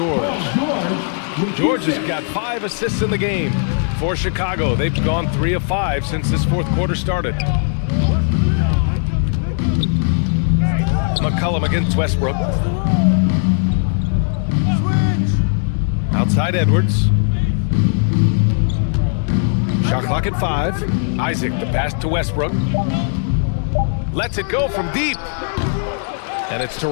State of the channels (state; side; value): silent; right; 65 dB below the other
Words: George has got 5 assists in the game. For Chicago, they've gone 3 of 5 since this fourth quarter started. McCollum against Westbrook. Outside Edwards. Shot clock at 5. Isaac, the pass to Westbrook. Lets it go from deep. And it's